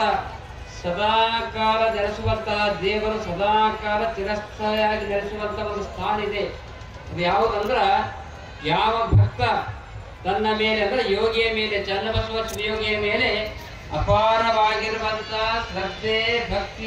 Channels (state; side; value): identical; both; correlation 1.00